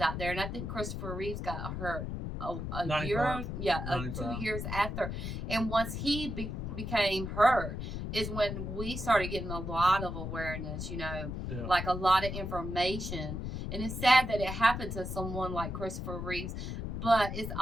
out there, and I think Christopher Reeves got hurt a year, 2 years after. And once he became hurt, is when we started getting a lot of awareness, you know, like a lot of information. And it's sad that it happened to someone like Christopher Reeves, but it's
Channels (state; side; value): noise; left; rumble, 5 dB below the sound